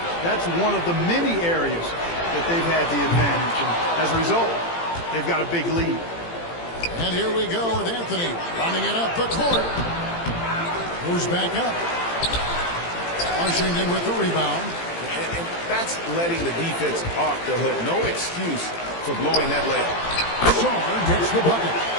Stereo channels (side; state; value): right; late; 18 ms